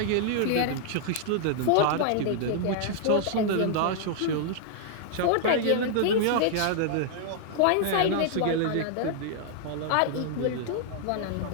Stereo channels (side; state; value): both; different; correlation 0.00